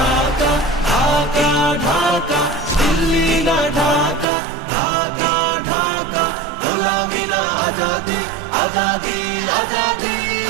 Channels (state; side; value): drops out; left; at 4.2 s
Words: ঢাকা ঢাকা দিল্লি না ঢাকা ঢাকা ঢাকা গোলামি না আজাদি আজাদি আজাদি